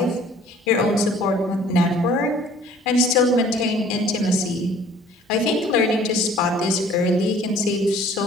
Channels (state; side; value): normal; both; correlation 0.53